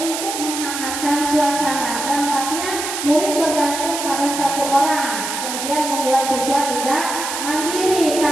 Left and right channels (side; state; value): right; noise; hiss, 5 dB below the sound